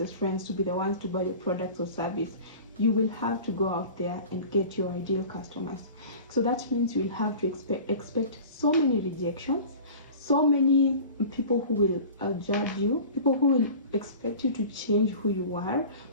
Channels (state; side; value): inverted; both; correlation -0.39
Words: friends to be the ones to buy your products or service. You will have to go out there and get your ideal customers. So that means you will have to expect so many rejections, so many people who will judge you, people who will expect you to change who you are,